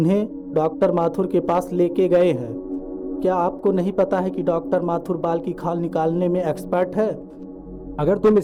डॉक्टर माथुर के पास लेके गए हैं। क्या आपको नहीं पता है कि डॉक्टर माथुर बाल की खाल निकालने में एक्सपर्ट है? अगर तुम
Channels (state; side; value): identical; both; correlation 1.00